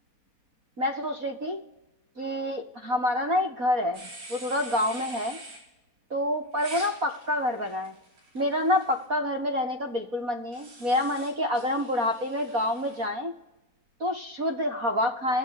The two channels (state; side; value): late; left; 4.2 ms